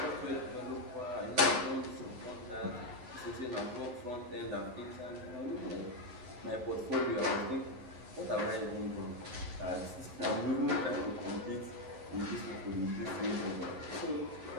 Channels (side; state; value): left; late; 11 ms